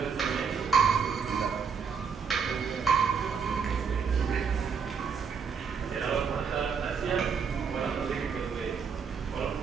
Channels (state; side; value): quieter; left; 6.3 dB